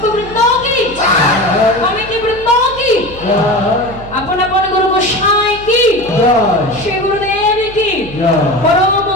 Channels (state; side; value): noise; right; hum, 16 dB below the sound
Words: বৃন্দ কি কমিটি বৃন্দ কি জয় আপন আপন গুরু গোসাই কি জয় শ্রী গুরুদেব কি জয় পরম